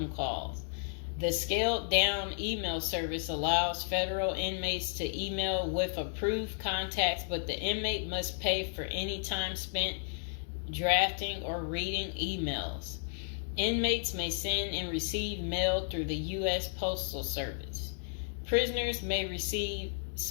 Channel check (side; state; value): right; silent; 56 dB below the other